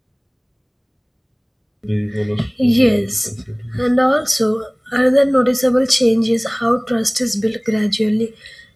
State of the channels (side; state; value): both; identical; correlation 1.00